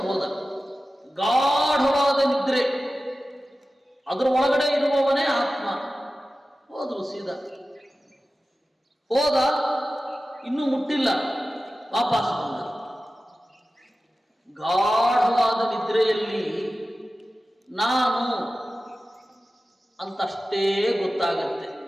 ಹೋದ. ಗಾಢವಾದ ನಿದ್ರೆ, ಅದರ ಒಳಗಡೆ ಇರುವವನೇ ಆತ್ಮ. ಹೋದ್ರು ಸೀದಾ. ಹೋದ, ಇನ್ನೂ ಮುಟ್ಟಿಲ್ಲ, ವಾಪಸ್ ಬಂದ. ಗಾಢವಾದ ನಿದ್ರೆಯಲ್ಲಿ ನಾನು ಅಂತಷ್ಟೇ ಗೊತ್ತಾಗತ್ತೆ,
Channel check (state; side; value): normal; both; correlation 0.95